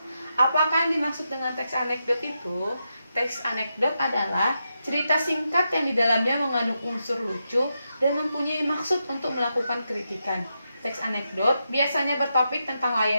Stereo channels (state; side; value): inverted; both; correlation -0.85